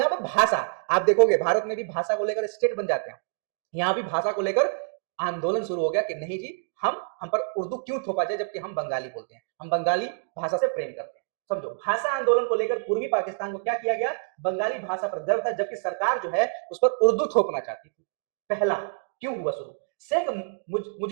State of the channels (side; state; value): left; silent; digital silence